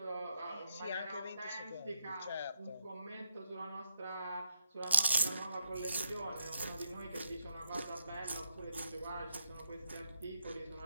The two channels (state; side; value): inverted; both; correlation -0.78